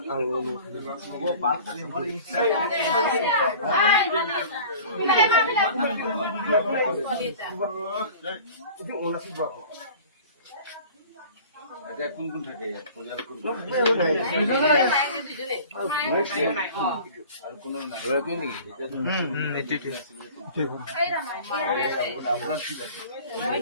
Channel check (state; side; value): inverted; both; correlation -0.43